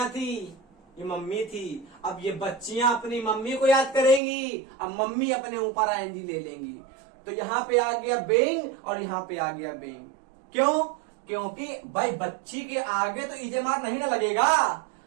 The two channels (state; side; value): drops out; left; at 4.2 s